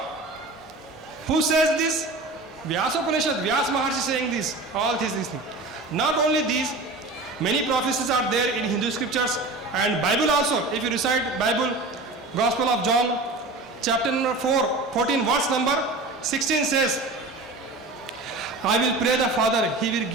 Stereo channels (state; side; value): quieter; left; 3.1 dB